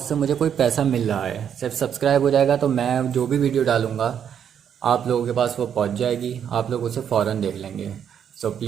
मुझे कोई पैसा मिल रहा है, सिर्फ सब्सक्राइब हो जाएगा तो मैं जो भी वीडियो डालूँगा आप लोगों के पास वो पहुंच जाएगी, आप लोग उसे फ़ौरन देख लेंगे। सो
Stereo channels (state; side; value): quieter; left; 8.5 dB